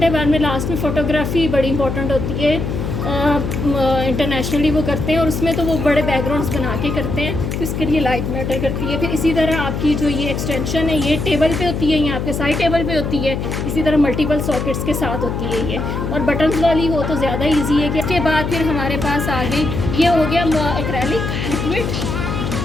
है बाद में लास्ट में फ़ोटोग्राफी बड़ी इंपॉर्टेंट होती है, इंटरनेशनली वो करते हैं और उसमें तो वो बड़े बैकग्राउंड्स बना के करते हैं, तो इसके लिए लाइट मैटर करती है। फिर इसी तरह आपकी जो ये एक्सटेंशन है ये टेबल पे होती है, ये आपके साइड टेबल पे होती है, इसी तरह मल्टीपल सॉकेट्स के साथ होती है ये, और बटन्स वाली हो तो ज़्यादा ईजी है। कि इसके बाद फिर हमारे पास आ गई, ये हो गया एक्रेलिक लिक्विड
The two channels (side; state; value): left; noise; hum, 3 dB below the sound